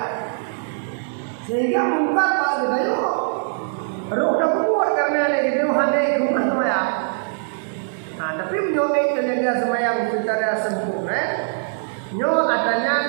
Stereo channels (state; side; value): silent; left; digital silence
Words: Sehingga mungkin bagi dia roh dah kuat kerana lagi dia handai rumah tu ya. Tapi menyokong terjaga sembahyang secara sempurna. Nyo